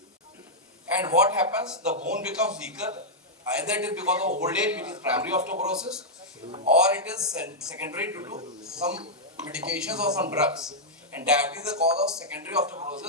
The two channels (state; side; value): normal; both; correlation -0.06